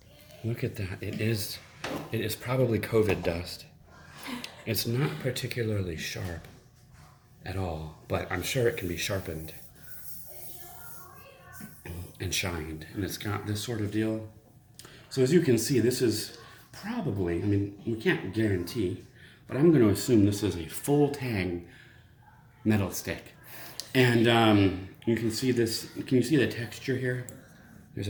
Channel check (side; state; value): both; identical; correlation 1.00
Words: at that. It is probably COVID dust. It's not particularly sharp at all, but I'm sure it can be sharpened and shined, and it's got this sort of deal. So as you can see, this is probably, I mean, we can't guarantee, but I'm going to assume this is a full tang metal stick. And you can see this, can you see the texture here? There's